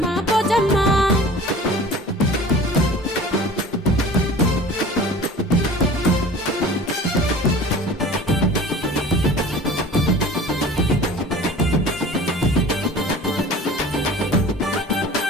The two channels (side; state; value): both; normal; correlation 0.42